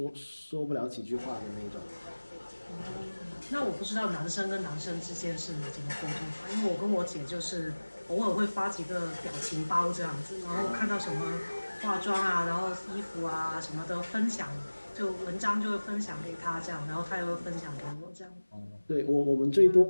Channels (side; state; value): both; inverted; correlation -1.00